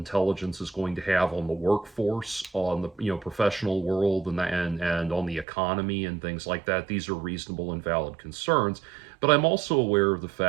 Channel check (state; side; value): drops out; left; at 5.5 s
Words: is going to have on the workforce, on the professional world, and on the economy and things like that. These are reasonable and valid concerns, but I'm also aware of the